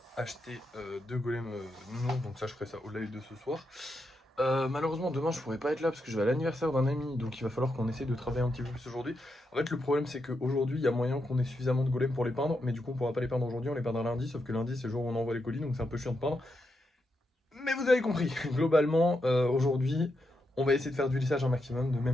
acheté deux golems nouveaux. Donc ça, je ferai ça au live de ce soir. Malheureusement, demain, je pourrai pas être là parce que je vais à l'anniversaire d'un ami. Donc il va falloir qu'on essaie de travailler un petit peu plus aujourd'hui. En fait, le problème, c'est qu'aujourd'hui, il y a moyen qu'on ait suffisamment de golems pour les peindre. Mais du coup, on pourra pas les peindre aujourd'hui, on les peindra lundi. Sauf que lundi, c'est le jour où on envoie les colis. Donc c'est un peu chiant de peindre. Mais vous avez compris, globalement, aujourd'hui, on va essayer de faire du lissage un maximum, de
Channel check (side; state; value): both; normal; correlation 0.84